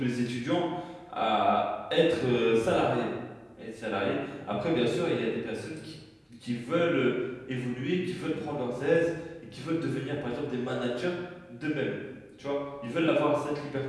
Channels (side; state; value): both; identical; correlation 1.00